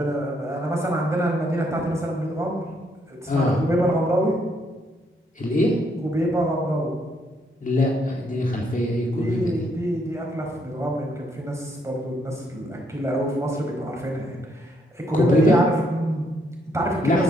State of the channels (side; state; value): both; normal; correlation 0.72